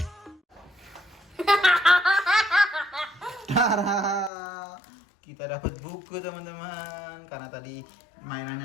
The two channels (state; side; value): drops out; right; at 4.3 s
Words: Tara. Kita dapat buku teman-teman. Karena tadi